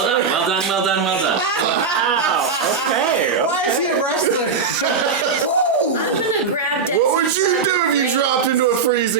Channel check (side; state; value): left; quieter; 5.2 dB